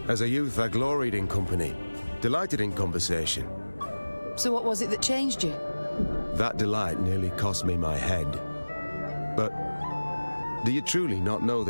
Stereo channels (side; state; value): both; inverted; correlation -1.00